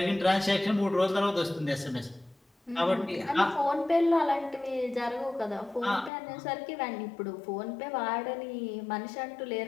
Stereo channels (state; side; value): drops out; right; at 6.1 s